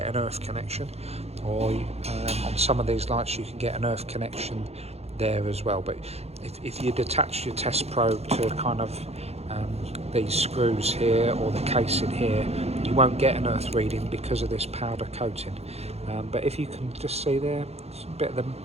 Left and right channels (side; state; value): left; late; 0.30 ms